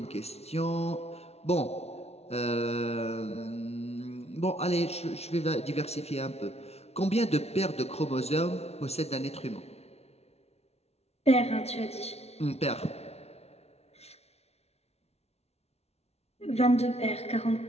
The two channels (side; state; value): right; late; 0.31 ms